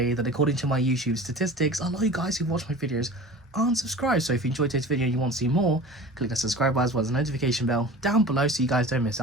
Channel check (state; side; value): normal; both; correlation 0.38